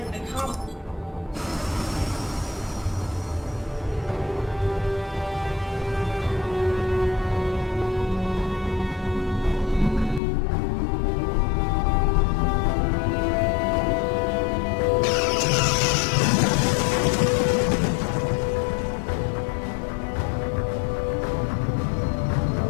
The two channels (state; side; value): drops out; right; at 10.2 s